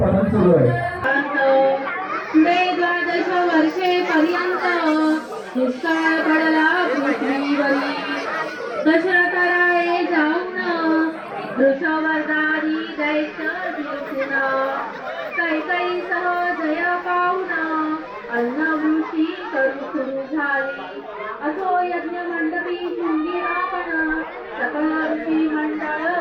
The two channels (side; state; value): both; identical; correlation 1.00